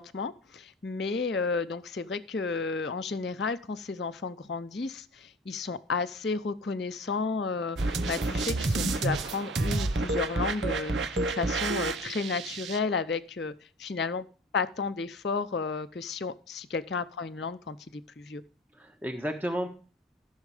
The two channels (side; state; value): both; normal; correlation 0.38